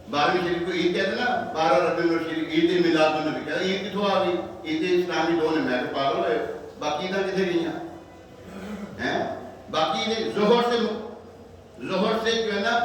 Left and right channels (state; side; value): identical; both; correlation 1.00